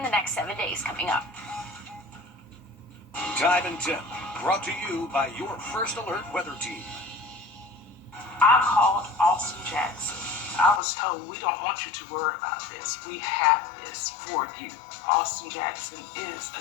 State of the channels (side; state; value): right; drops out; at 10.8 s